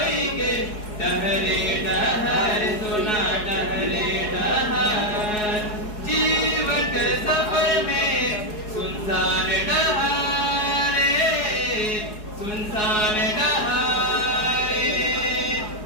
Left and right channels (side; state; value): right; late; 4.7 ms